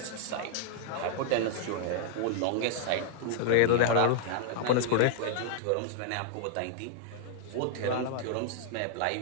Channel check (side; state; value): both; different; correlation -0.01